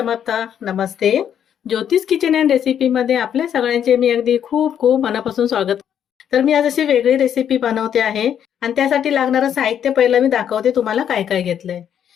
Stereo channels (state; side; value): quieter; right; 9.1 dB